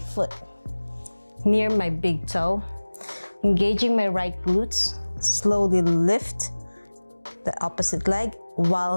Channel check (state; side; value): inverted; both; correlation -1.00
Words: near my big toe, engaging my right glutes, slowly lift the opposite leg